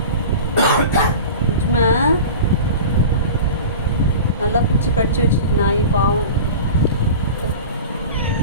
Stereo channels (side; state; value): both; inverted; correlation -0.35